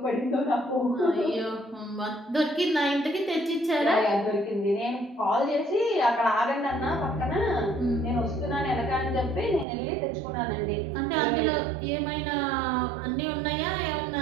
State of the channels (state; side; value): drops out; left; at 9.7 s